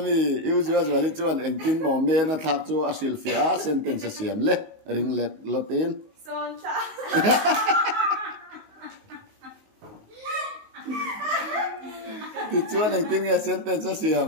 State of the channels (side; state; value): left; late; 19 ms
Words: usual chuan engtin mo me na thak chu a hril fe a sentence siam le ring let lotin son ta ti chuan engtin nge sentence siam